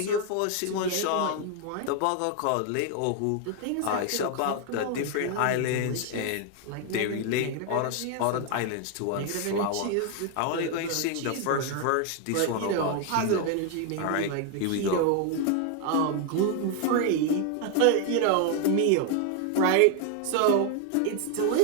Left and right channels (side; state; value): both; different; correlation 0.01